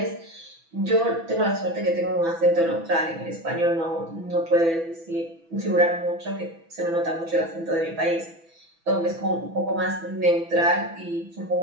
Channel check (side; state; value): left; late; 6.0 ms